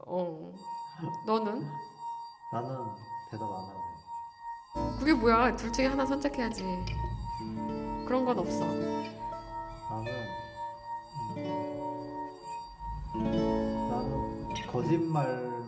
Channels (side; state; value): both; identical; correlation 1.00